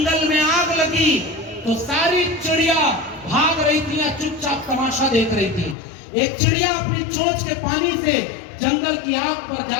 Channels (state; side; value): drops out; right; at 5.8 s